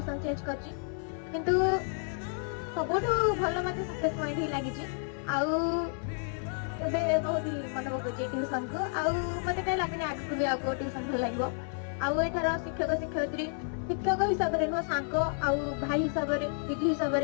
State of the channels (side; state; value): right; silent; 56 dB below the other